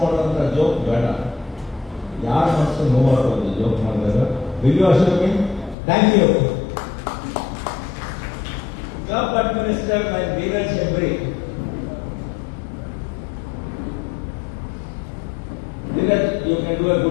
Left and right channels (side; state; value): right; drops out; at 5.8 s